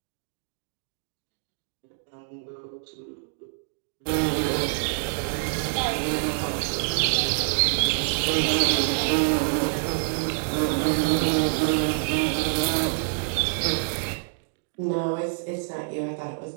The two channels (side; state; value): left; silent; digital silence